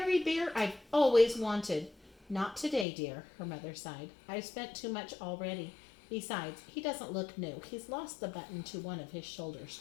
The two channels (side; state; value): right; drops out; at 2.9 s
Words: bear I've always wanted." "Not today, dear," her mother sighed. "I've spent too much already. Besides, he doesn't look new. He's lost the button to one of his shoulder